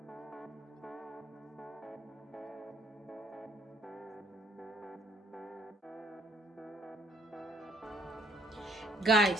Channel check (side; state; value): both; normal; correlation 0.63